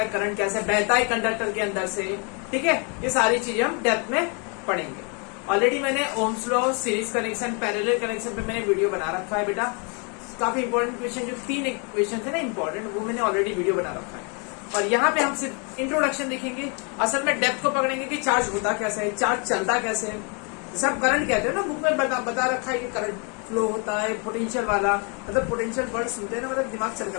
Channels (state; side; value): quieter; right; 35.3 dB